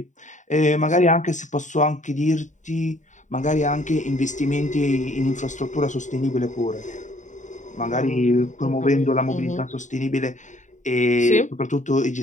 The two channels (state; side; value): late; right; 0.36 ms